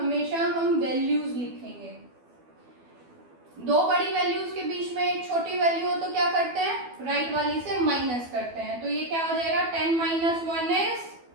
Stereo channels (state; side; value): late; left; 12 ms